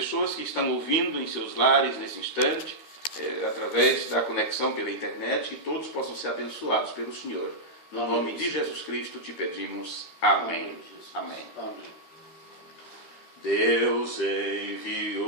que estão ouvindo em seus lares nesse instante, através da conexão pela internet, que todos possam ser abençoados pelo Senhor. No nome de Jesus Cristo te pedimos. Amém. Amém. Deus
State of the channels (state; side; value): late; right; 13 ms